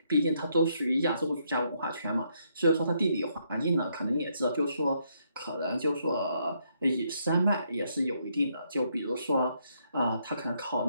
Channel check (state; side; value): inverted; both; correlation -0.74